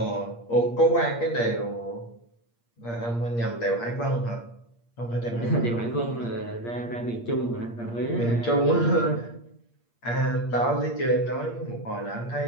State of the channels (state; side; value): late; right; 8.6 ms